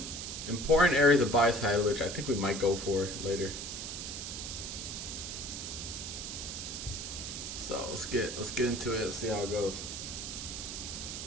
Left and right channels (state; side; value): noise; right; hiss, 6 dB below the sound